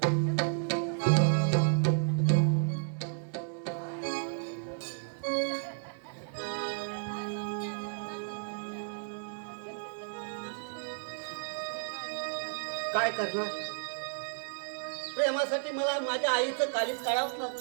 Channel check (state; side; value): silent; left; 56 dB below the other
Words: काय करणार? प्रेमासाठी मला माझ्या आईचं काळीच काढावंच